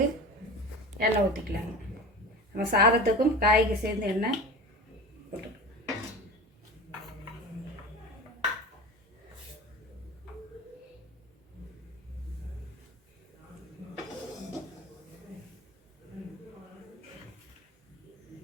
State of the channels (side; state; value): both; normal; correlation 0.33